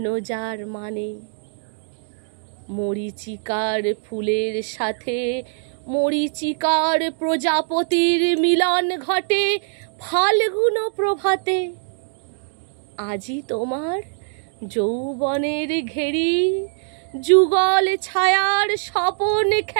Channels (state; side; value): silent; left; digital silence